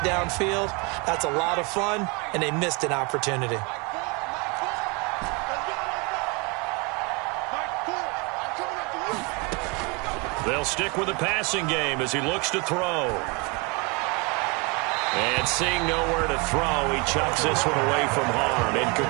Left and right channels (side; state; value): left; quieter; 29.8 dB